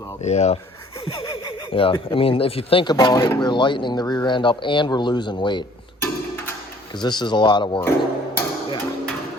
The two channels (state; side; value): normal; both; correlation 0.56